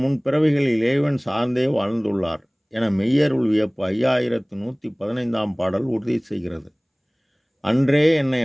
முன் பிறவிகளில் இறைவன் சார்ந்தே வாழ்ந்துள்ளார் என மெய்யருள் வியப்பு 5115ஆம் பாடல் உறுதி செய்கிறது. அன்றே என்னை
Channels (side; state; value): both; identical; correlation 1.00